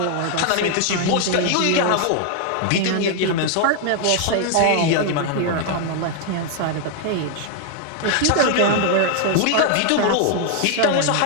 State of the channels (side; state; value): both; different; correlation 0.00